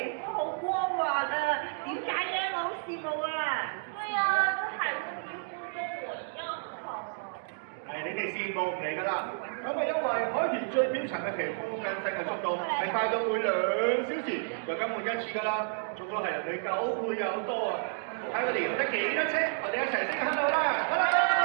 膚好光滑啊，點解嘅？我好羨慕啊！對啊，這海豚皮膚跟我一樣好啊。係你哋羨慕唔嚟㗎啦，咁係因為海豚最表層嘅皮膚更新嘅速度係快到每2小時就更換一次㗎啦，足足係人哋9倍有多啊！睇我哋游得幾多車，我哋一齊升響度啦！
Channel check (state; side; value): silent; left; digital silence